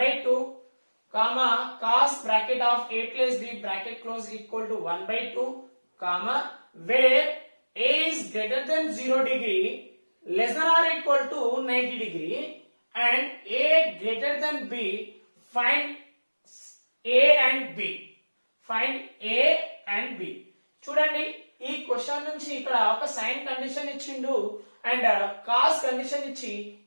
comma cos bracket of a plus b bracket close equal to 1/2 comma where a is greater than 0 degree less than or equal to 90 degree and a greater than b, find a and b. Find a and b. చూడండి, ఈ question నుంచి ఇక్కడ ఒక sine condition ఇచ్చిండు and cos condition ఇచ్చి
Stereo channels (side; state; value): both; inverted; correlation -1.00